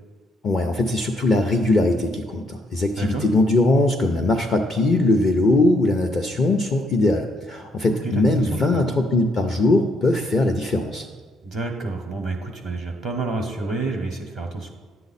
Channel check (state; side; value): normal; both; correlation 0.73